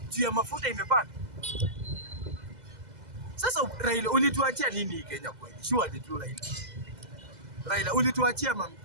juu ya mafuta imepanda. Sasa Raila ulituachia nini Kenya kweli? Surely tu Raila ulituachia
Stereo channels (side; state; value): left; late; 2.0 ms